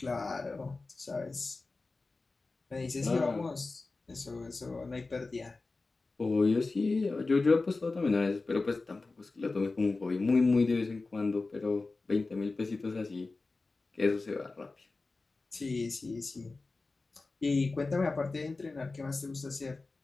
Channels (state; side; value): quieter; right; 3.6 dB